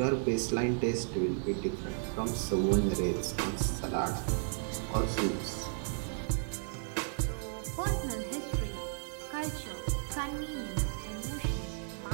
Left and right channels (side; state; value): left; silent; digital silence